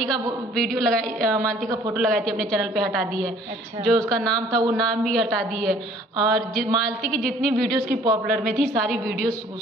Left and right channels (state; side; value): normal; both; correlation 0.56